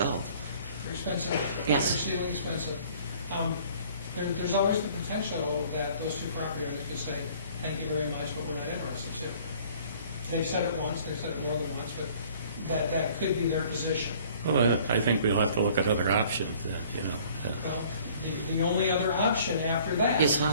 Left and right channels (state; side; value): inverted; both; correlation -0.54